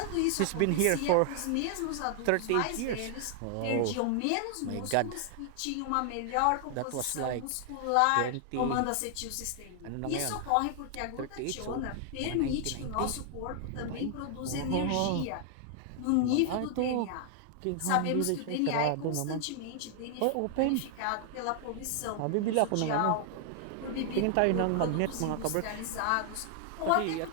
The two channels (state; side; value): different; both; correlation 0.00